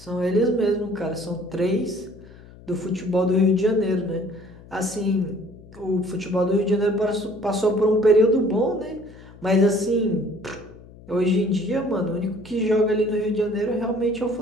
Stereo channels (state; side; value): noise; left; hum, 21 dB below the sound